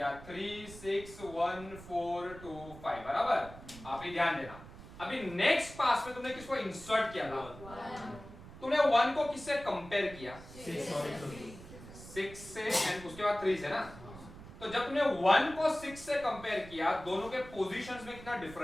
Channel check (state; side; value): noise; right; rumble, 16 dB below the sound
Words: 3 6 1 4 2 5. बराबर. आप ही ध्यान देना. अभी नेक्स्ट पास में तुमने किसको इंसर्ट किया था? 1. तुमने 1 को किससे कंपेयर किया? 6 से एंड उसके बाद 3 से ना. तो जब तुमने 1 को 6 से कंपेयर किया, दोनों के पोजीशंस में कितना